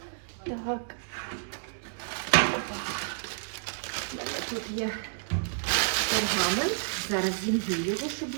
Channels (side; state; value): left; silent; digital silence